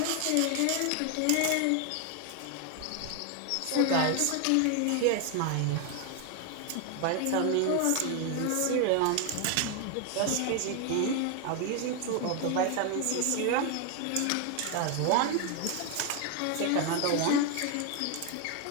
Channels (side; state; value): both; different; correlation 0.01